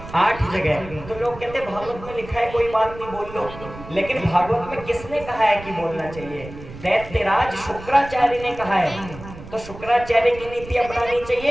8 जगह। तो लोग कहते हैं भागवत में लिखा है कोई बात नहीं बोल लो, लेकिन भागवत में किसने कहा है कि बोलना चाहिए? दैत्यराज शुक्राचार्य ने कहा है। तो शुक्राचार्य की नीति अपनानी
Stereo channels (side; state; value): right; noise; rumble, 15 dB below the sound